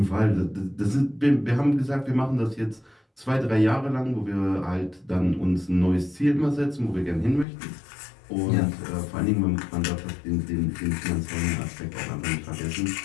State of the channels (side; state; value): right; drops out; at 7.5 s